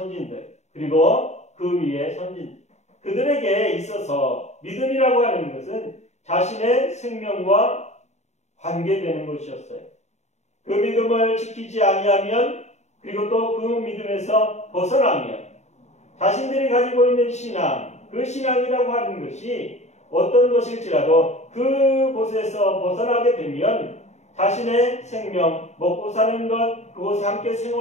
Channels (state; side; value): late; right; 0.33 ms